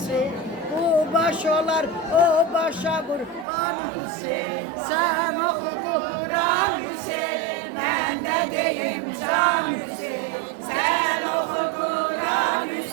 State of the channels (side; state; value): left; drops out; at 3.5 s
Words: bu baş olar o başa kurban Hüseyin. Sen oku Kur'an Hüseyin, ben de deyim can Hüseyin. Sen oku Kur'an